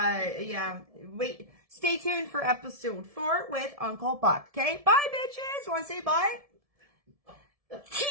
yeah, wait. Stay tuned for episode 4 with Uncle Buck. Okay? Bye, bitches. Want to say bye?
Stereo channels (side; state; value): left; late; 1.7 ms